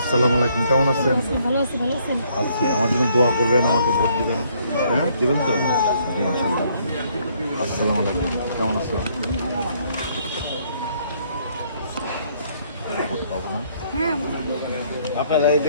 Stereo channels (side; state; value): both; inverted; correlation -0.67